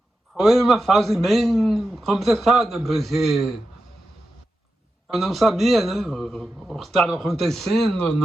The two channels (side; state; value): both; normal; correlation 0.90